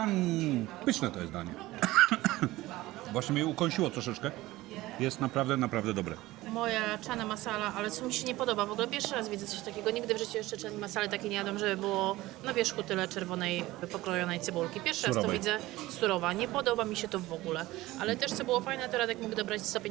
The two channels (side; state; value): left; quieter; 18.0 dB